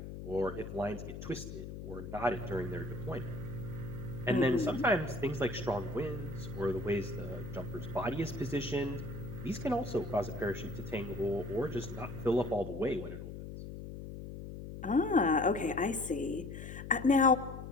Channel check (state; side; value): noise; left; hum, 9 dB below the sound